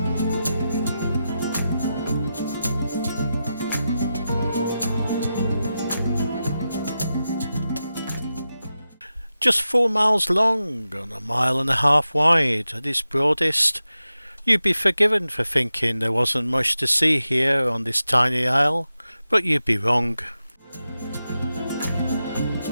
Just 4 miles long and 1.5 miles wide at its broadest. You'd be forgiven for thinking there wasn't much to see here on this tiny isle, but you'd be wrong.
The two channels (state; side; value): inverted; both; correlation -0.91